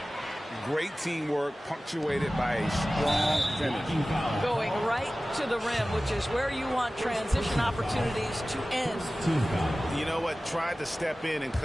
Great teamwork, punctuated by a strong finish. Going right to the rim, which is where you want transition opportunities to end. You know what? Tried to step in and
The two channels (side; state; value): both; normal; correlation 0.97